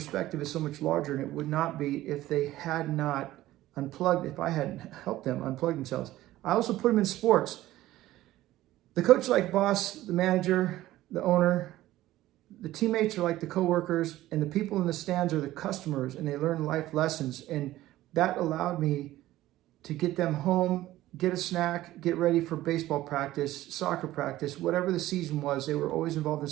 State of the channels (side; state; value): left; quieter; 15.5 dB